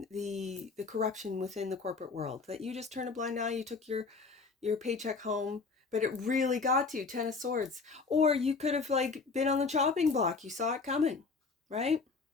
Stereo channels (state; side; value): quieter; right; 4.5 dB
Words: the corruption within the corporate world. That you just turned a blind eye, you took your paycheck home, but it really got to you, Ten of Swords. Or you could have been on the chopping block. You saw it coming, right?